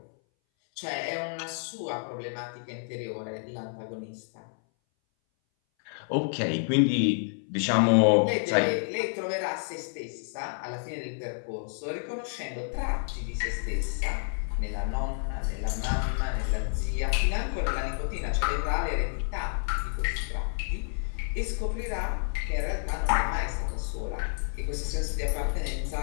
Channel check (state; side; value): silent; right; 58 dB below the other